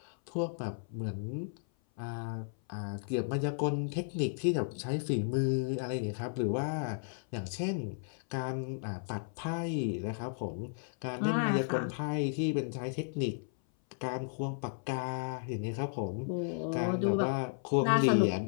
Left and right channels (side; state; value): right; silent; 55 dB below the other